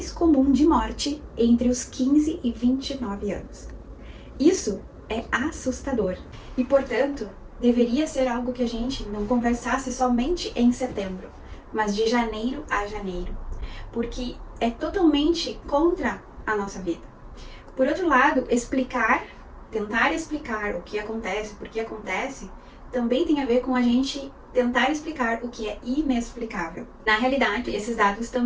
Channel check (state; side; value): identical; both; correlation 1.00